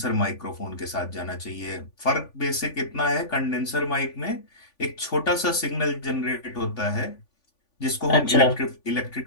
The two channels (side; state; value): right; late; 3.5 ms